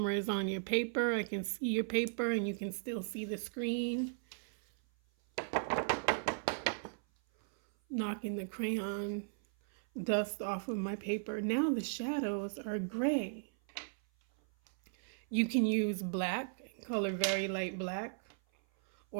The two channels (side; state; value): left; silent; 53 dB below the other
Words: is on your paper. I can see your paper and you can still see the screen. Knocking the crayon dust off of my paper. Now the shadows are gray. You can use black, color very light black,